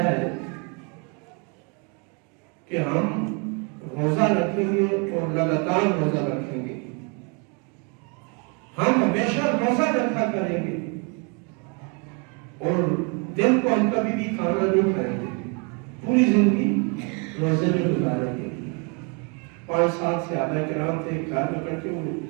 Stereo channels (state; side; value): quieter; left; 34.4 dB